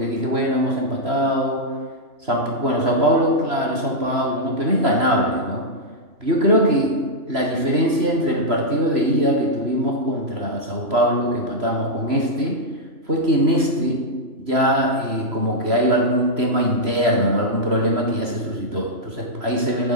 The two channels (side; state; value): left; late; 3.0 ms